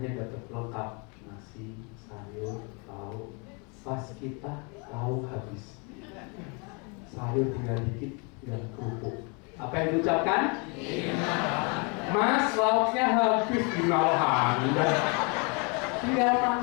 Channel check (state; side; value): quieter; right; 33.0 dB